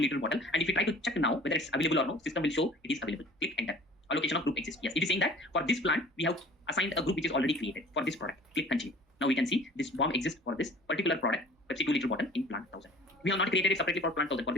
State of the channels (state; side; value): normal; both; correlation 0.47